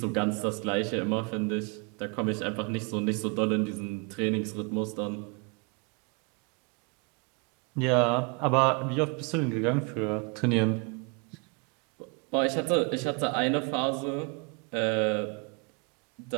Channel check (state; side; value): quieter; left; 33.4 dB